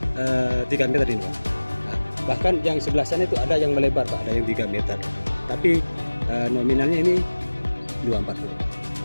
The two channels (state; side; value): inverted; both; correlation -1.00